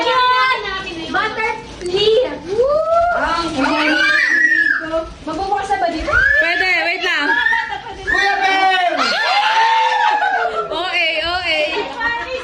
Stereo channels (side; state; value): both; identical; correlation 1.00